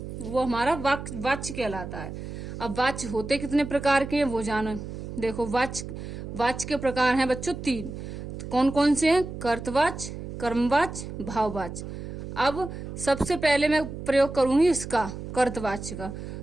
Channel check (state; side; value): noise; right; hum, 9 dB below the sound